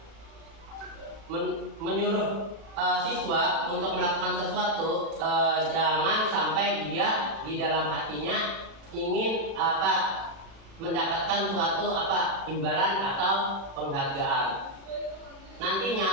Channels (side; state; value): left; late; 36 ms